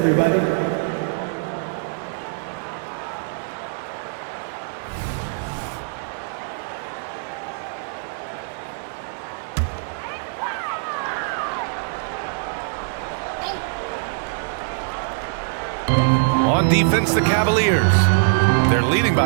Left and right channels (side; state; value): left; silent; digital silence